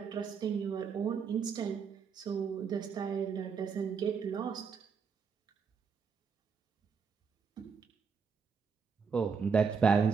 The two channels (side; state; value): left; quieter; 5.9 dB